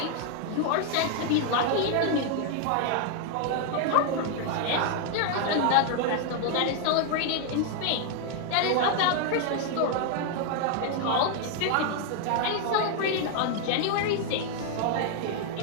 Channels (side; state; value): both; different; correlation 0.00